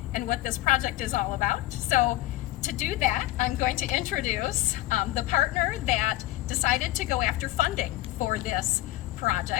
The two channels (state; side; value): quieter; right; 17.3 dB